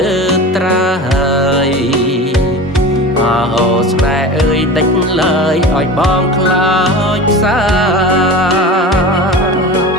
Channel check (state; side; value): normal; both; correlation 0.32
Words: ើត្រើយអូស្នេហ៍អើយដេញឡើយឲ្យបងខ្លោចផ្សា